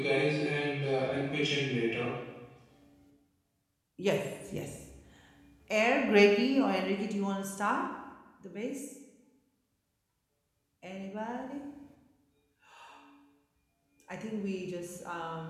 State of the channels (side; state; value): both; identical; correlation 1.00